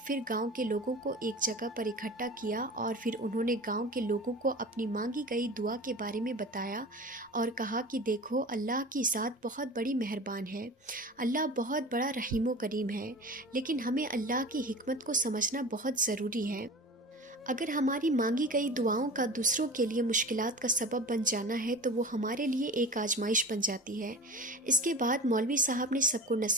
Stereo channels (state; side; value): normal; both; correlation 0.35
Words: پھر گاؤں کے لوگوں کو ایک جگہ پر اکٹھا کیا اور پھر انہوں نے گاؤں کے لوگوں کو اپنی مانگی گئی دعا کے بارے میں بتایا اور کہا کہ دیکھو، اللہ کی ذات بہت بڑی مہربان ہے، اللہ بہت بڑا رحیم و کریم ہے، لیکن ہمیں اللہ کی حکمت کو سمجھنا بہت ضروری ہے۔ اگر ہماری مانگی گئی دعاؤں کا دوسروں کے لیے مشکلات کا سبب بن جانا ہے تو وہ ہمارے لیے ایک آزمائش بن جاتی ہے۔ اس کے بعد مولوی صاحب نے سب کو